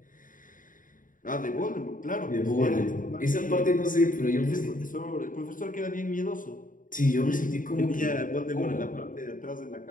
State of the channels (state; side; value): late; right; 0.39 ms